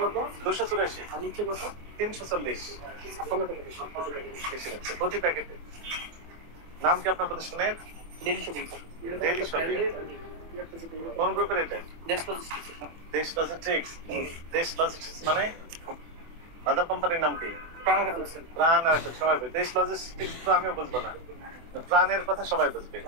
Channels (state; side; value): late; left; 24 ms